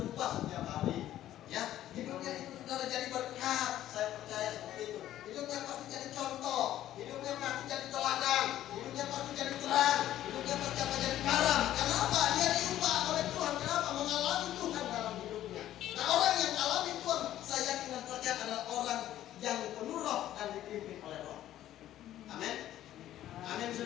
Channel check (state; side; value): quieter; right; 12.8 dB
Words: setiap hari. Ya, hidupnya itu saudara jadi berkat, saya percaya seperti itu. Hidupnya pasti jadi contoh, hidupnya pasti jadi teladan, hidupnya pasti jadi terang, hidupnya pasti akan jadi garam. Kenapa? Dia diubah oleh Tuhan. Kenapa? Mengalami Tuhan dalam hidupnya. Nah, orang yang alami Tuhan, saya yakin dan percaya adalah orang yang penuh roh dan dipimpin oleh roh. Amin. Amin,